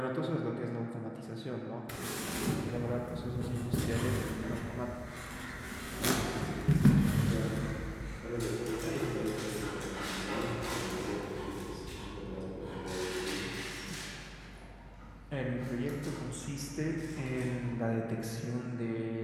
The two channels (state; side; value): identical; both; correlation 1.00